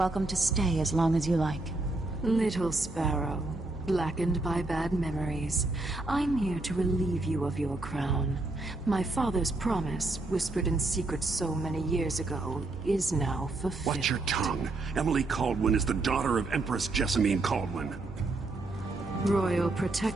to stay as long as you like. Little sparrow, blackened by bad memories, I'm here to relieve you of your crown. My father's promise, whispered in secret so many years ago, is now fulfilled. Watch your tongue. Emily Caldwin is the daughter of Empress Jessamine Caldwin. Royal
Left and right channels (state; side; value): quieter; left; 3.1 dB